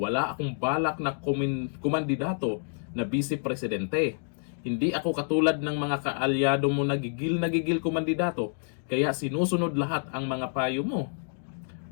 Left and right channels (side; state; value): right; silent; 59 dB below the other